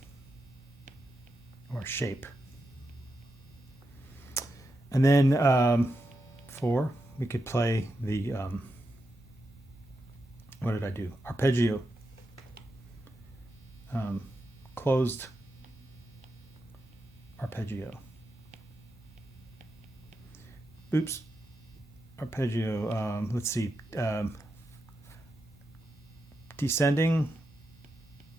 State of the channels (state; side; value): normal; both; correlation 0.87